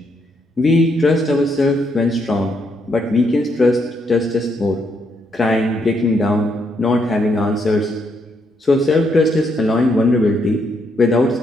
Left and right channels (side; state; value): both; normal; correlation 0.76